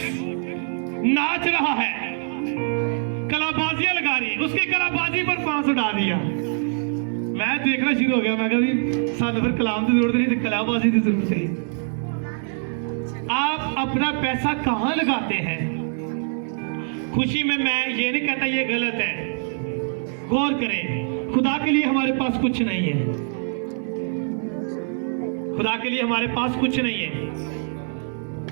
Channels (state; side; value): silent; left; 63 dB below the other